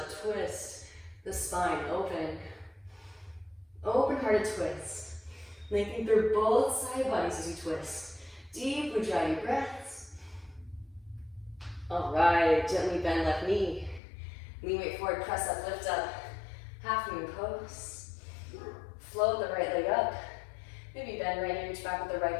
twist. The spine open. Open-hearted twist. Linking through both side bodies as you twist. Deep ujjayi breaths. Alright, gently bend left knee. Lean weight forward, press up, lift up. Half moon pose. Float the right leg up. Maybe bend right knee, reach back with the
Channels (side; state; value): right; drops out; at 14.0 s